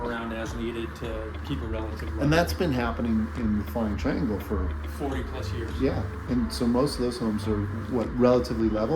around as needed to keep a relative level. And that's been happening in the Flying Triangle for 40 plus years. yeah. And so most of those homes are what, relatively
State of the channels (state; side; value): identical; both; correlation 1.00